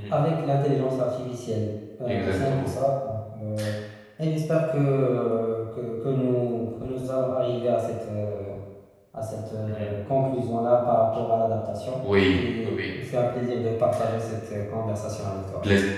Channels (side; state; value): both; identical; correlation 1.00